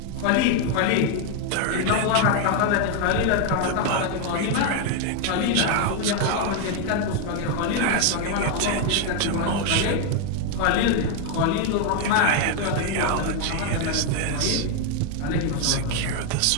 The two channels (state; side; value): different; both; correlation 0.01